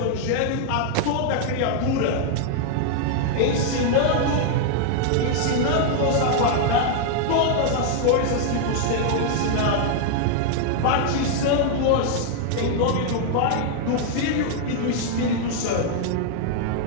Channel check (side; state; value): both; different; correlation 0.00